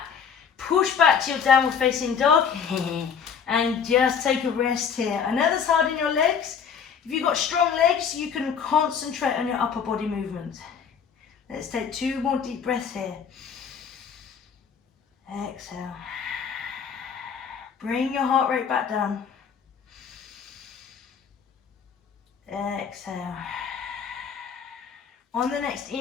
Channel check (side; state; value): right; quieter; 7.0 dB